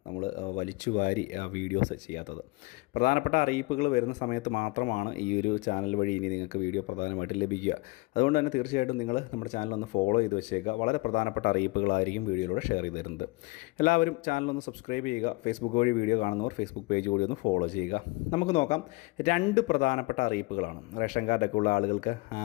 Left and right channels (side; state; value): right; quieter; 25.2 dB